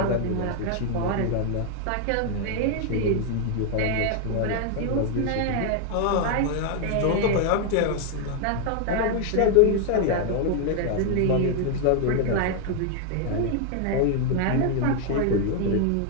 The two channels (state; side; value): different; both; correlation 0.00